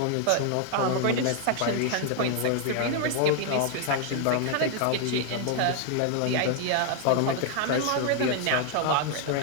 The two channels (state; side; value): different; both; correlation 0.00